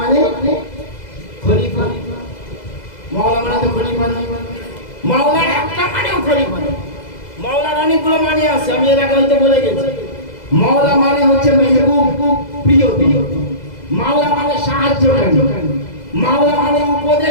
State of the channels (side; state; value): right; late; 2.0 ms